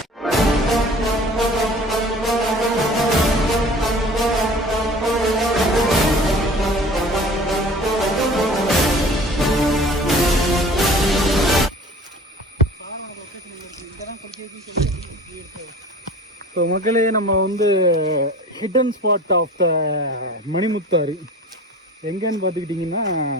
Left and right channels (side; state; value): both; normal; correlation 0.43